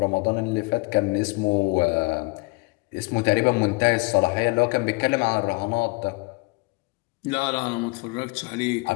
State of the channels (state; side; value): quieter; right; 27.7 dB